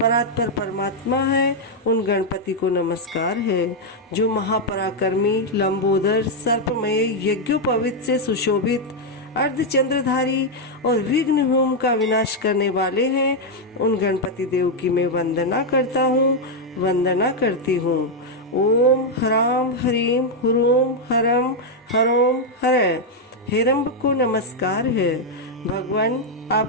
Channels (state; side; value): normal; both; correlation 0.00